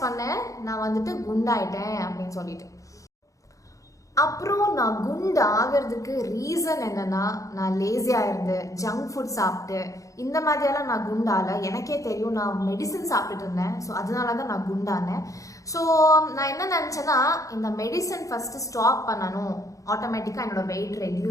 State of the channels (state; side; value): late; right; 0.16 ms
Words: பண்ணேன், நான் குண்டாயிட்டேன் அப்படின்னு சொல்லிட்டு. அப்புறம் நான் குண்டு ஆகிறதுக்கு ரீசன் என்னன்னா, நான் லேசியாக இருந்து ஜங்க் ஃபுட் சாப்பிட்டு இந்த மாதிரியெல்லாம் நான் குண்டால. எனக்கே தெரியும், நான் மெடிசன் சாப்பிட்டுட்டு இருந்தேன். ஸோ அதனால தான் நான் குண்டானேன். ஸோ நான் என்ன நினச்சேன்னா, இந்த மெடிசன் ஃபஸ்ட்டு ஸ்டாப் பண்ணணும், ஆட்டோமேட்டிக்காக என்னோட வெயிட்